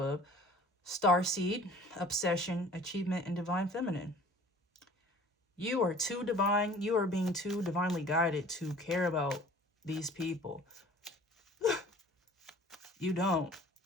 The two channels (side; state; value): both; normal; correlation 0.47